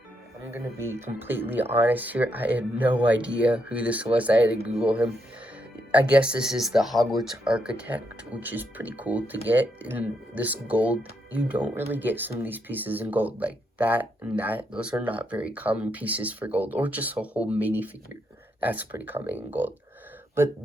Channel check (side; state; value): both; normal; correlation 0.79